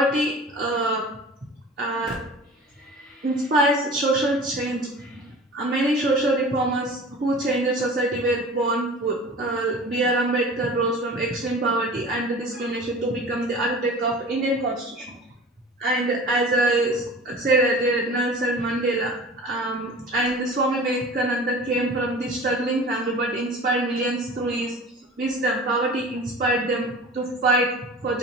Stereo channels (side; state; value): both; normal; correlation 0.40